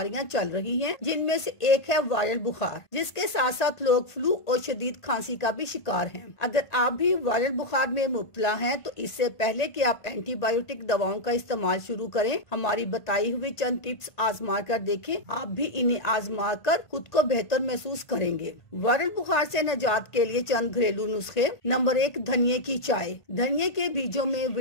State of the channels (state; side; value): late; right; 1.8 ms